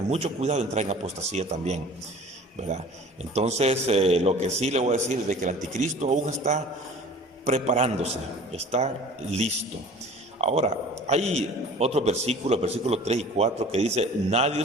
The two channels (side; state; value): both; normal; correlation 0.45